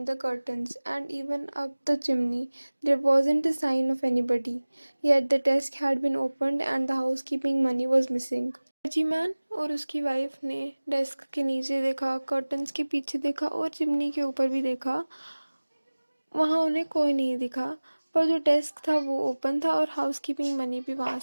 the curtains and even up the chimney. There wasn't a sign of anybody. Yet the desk had been opened and the housekeeping money was missing. Clergyman और उसकी wife ने desk के नीचे देखा, curtains के पीछे देखा और चिमनी के ऊपर भी देखा। वहाँ उन्हें कोई नहीं दिखा, पर जो डेस्क था वो ओपन था और हाउसकीपिंग मनी भी वहाँ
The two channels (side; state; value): both; inverted; correlation -1.00